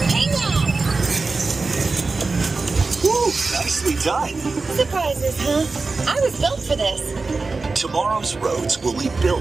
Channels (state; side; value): quieter; left; 3.9 dB